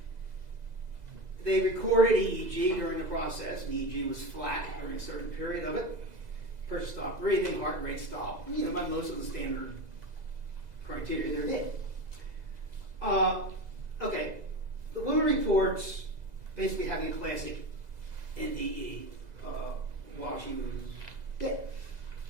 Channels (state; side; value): late; left; 2.0 ms